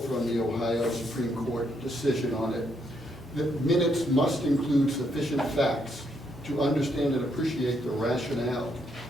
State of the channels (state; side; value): normal; both; correlation 0.75